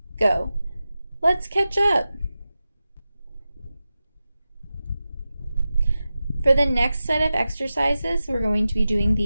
go. Let's catch up. For the next set of exercises, we're going to be doing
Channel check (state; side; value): inverted; both; correlation -0.94